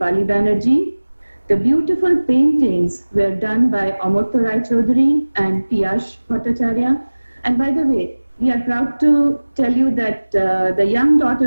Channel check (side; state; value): both; inverted; correlation -1.00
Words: Banerjee. The beautiful paintings were done by Amartya Rai Chaudhary and Piyash Bhattacharya. And by the way, we are proud to tell you that the young